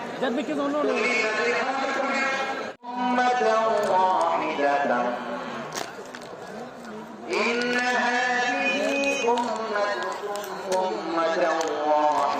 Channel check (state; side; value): identical; both; correlation 1.00